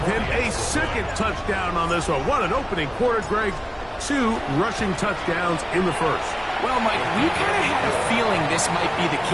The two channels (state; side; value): identical; both; correlation 1.00